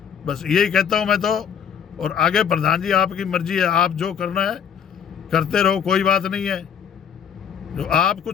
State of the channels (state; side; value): quieter; right; 8.0 dB